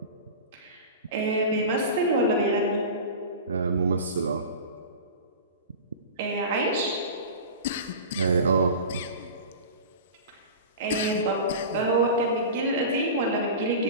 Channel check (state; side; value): inverted; both; correlation -0.32